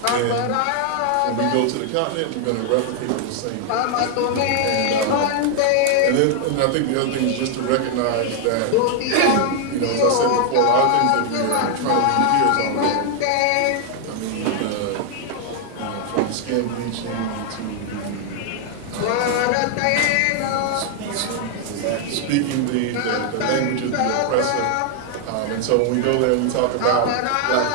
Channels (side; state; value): both; different; correlation 0.00